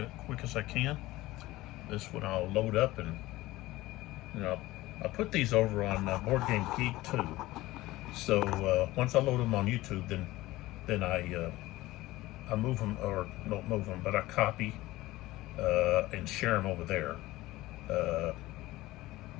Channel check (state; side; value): quieter; right; 18.1 dB